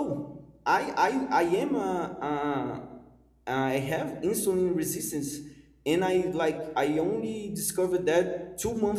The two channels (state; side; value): identical; both; correlation 1.00